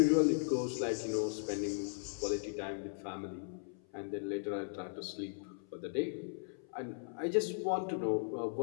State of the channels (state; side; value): silent; right; 53 dB below the other